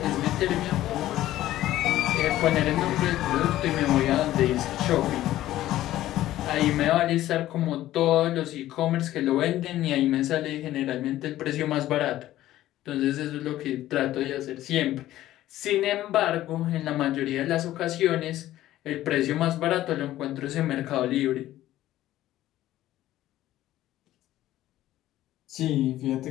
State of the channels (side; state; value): right; quieter; 14.3 dB